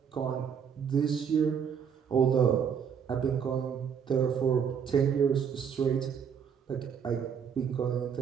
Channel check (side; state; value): left; quieter; 7.4 dB